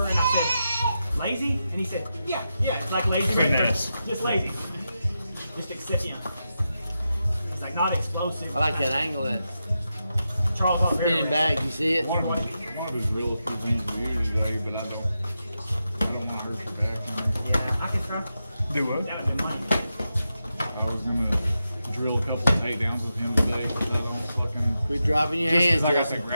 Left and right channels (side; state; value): both; inverted; correlation -0.88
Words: And I said, lazy. And he said, yeah, it's like lazy. Finesse. Just lazy. Just excipient. He's like not explosive. I like that angle, that Charles Oliveira. spinning back. You see it? one of his real few things to do today, but I don't want to hurt your back. Yeah, I can try. do what? That would be money. I was gonna drill a couple of takedowns with him today, but I don't fucking. Quit dropping your Just hands, 'cause I got Justin. the